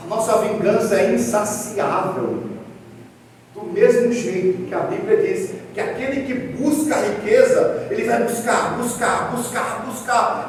nossa vingança é insaciável. Do mesmo jeito que a Bíblia diz que aquele que busca a riqueza, ele vai buscar,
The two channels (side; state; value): both; identical; correlation 1.00